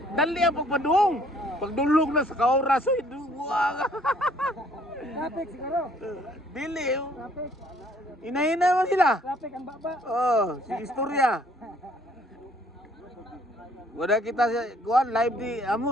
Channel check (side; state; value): both; normal; correlation 0.61